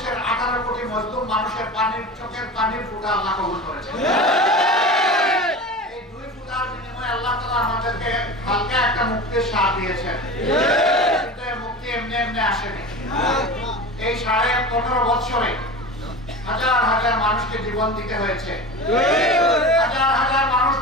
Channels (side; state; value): both; normal; correlation 0.31